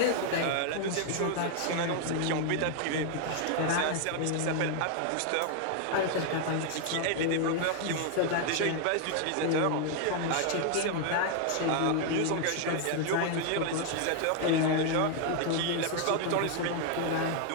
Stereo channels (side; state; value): both; different; correlation 0.00